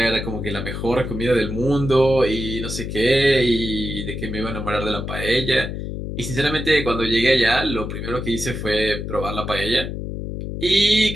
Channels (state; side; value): noise; left; hum, 6 dB below the sound